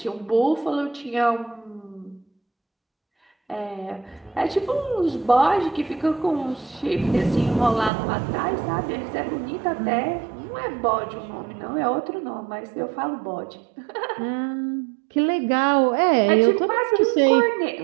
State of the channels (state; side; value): drops out; left; at 7.9 s